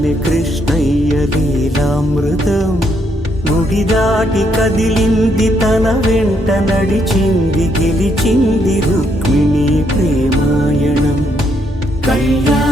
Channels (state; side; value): normal; both; correlation 0.74